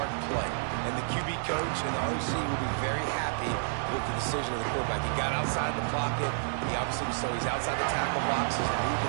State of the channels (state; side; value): silent; left; digital silence